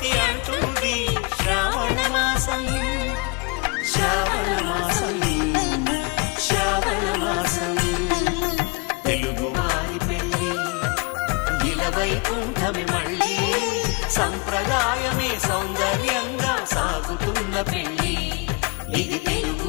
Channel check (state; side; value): quieter; right; 30.0 dB